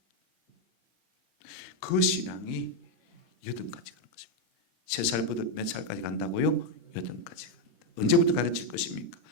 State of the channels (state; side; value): late; right; 11 ms